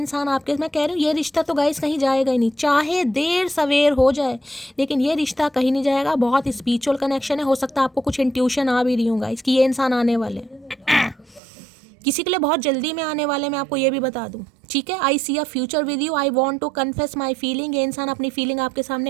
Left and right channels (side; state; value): left; drops out; at 11.4 s